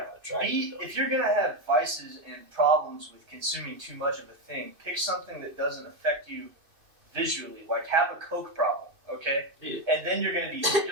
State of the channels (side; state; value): left; late; 2.6 ms